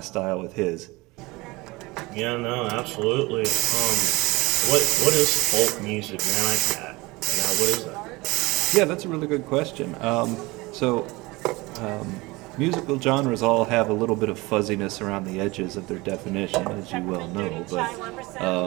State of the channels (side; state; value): left; quieter; 22.6 dB